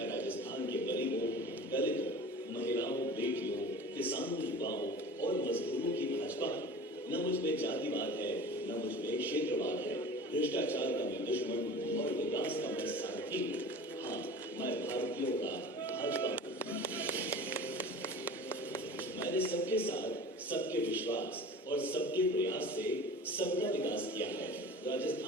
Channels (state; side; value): normal; both; correlation 0.38